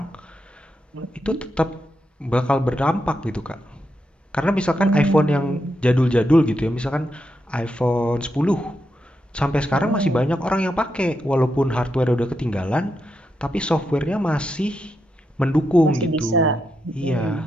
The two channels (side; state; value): both; normal; correlation 0.84